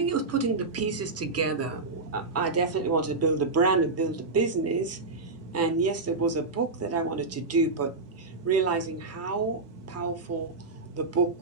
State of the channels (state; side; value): quieter; left; 3.6 dB